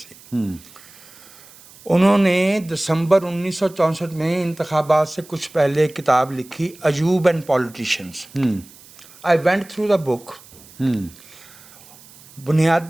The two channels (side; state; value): right; noise; hiss, 23 dB below the sound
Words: उन्होंने दिसंबर 1964 में इंतखाबात से कुछ पहले किताब लिखी, Ayub and politicians. I went through the book.